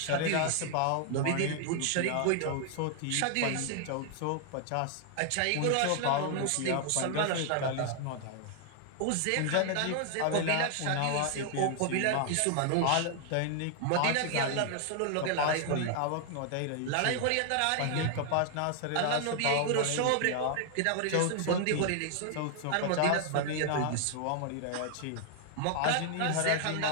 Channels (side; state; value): both; different; correlation 0.00